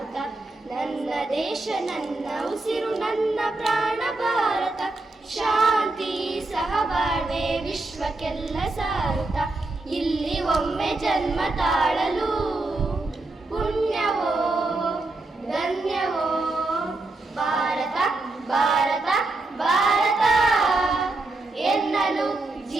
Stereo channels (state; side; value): quieter; left; 3.0 dB